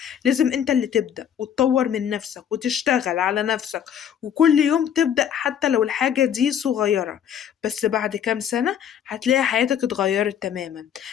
لازم انت اللي تبدأ وتطور من نفسك وتشتغل على نفسك وكل يوم تبدأ حتى لو الحاجة دي صغيرة. بس بعد كام سنة هتلاقي حياتك اتغيرت تماما،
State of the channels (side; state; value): right; quieter; 9.0 dB